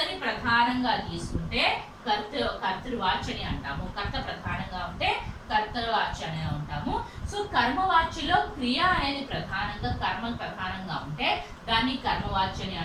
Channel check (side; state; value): both; identical; correlation 1.00